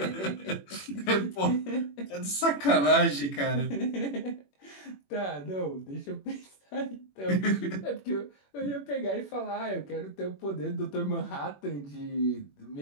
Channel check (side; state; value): right; late; 21 ms